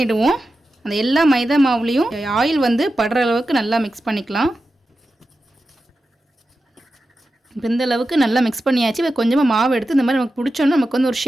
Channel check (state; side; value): normal; both; correlation 0.92